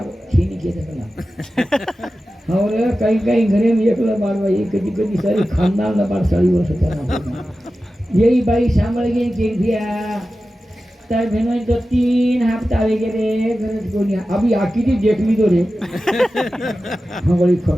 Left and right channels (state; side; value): normal; both; correlation 0.94